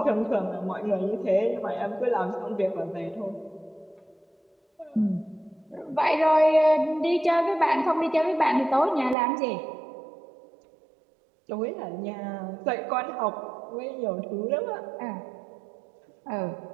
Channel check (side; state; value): left; drops out; at 9.2 s